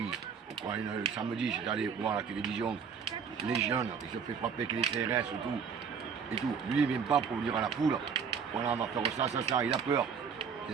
Pourquoi samedi, j'étais allé voir la télévision. Les jeunes, ils se fait frapper avec les CRS et tout. Et tout. Lui, il ne vient pas pour dire à la foule, voilà, on va faire ça. Il a peur.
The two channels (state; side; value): quieter; left; 6.5 dB